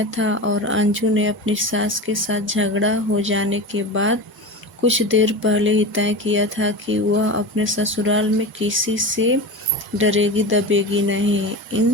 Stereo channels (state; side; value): normal; both; correlation 0.27